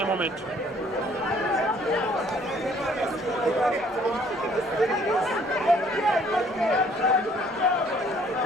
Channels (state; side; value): normal; both; correlation 0.60